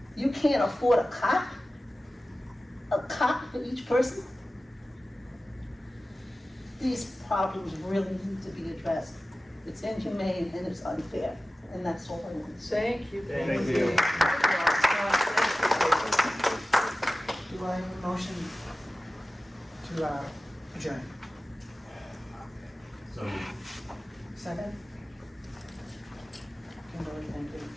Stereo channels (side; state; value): both; normal; correlation 0.95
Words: You can't afford a cot for each person. These problems really need to be addressed. It's inhumane and it's unfair, and that's all I want to say. Thank you. Thank you. Do I have a motion to adjourn? Second? Kimberly, thank you.